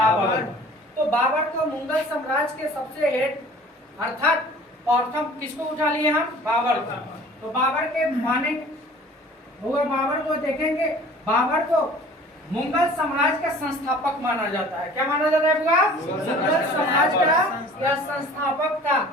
तो बाबर को मुगल साम्राज्य के सबसे हेड अर्थात प्रथम किसको उठा लिए हम, बाबर को। तो बाबर के माने हुआ, बाबर को देखेंगे, बाबर को मुगल साम्राज्य का संस्थापक माना जाता है। क्या माना जाता है बुआ, मुगल साम्राज्य का यह संस्थापक था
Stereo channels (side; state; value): both; normal; correlation 0.47